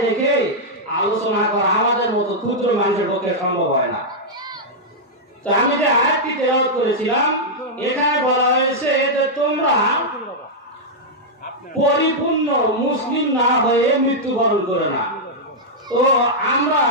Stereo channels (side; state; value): both; normal; correlation -0.06